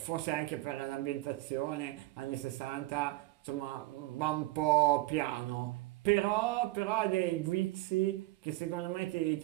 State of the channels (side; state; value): left; quieter; 19.6 dB